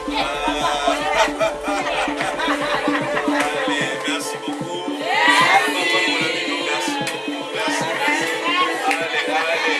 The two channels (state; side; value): identical; both; correlation 1.00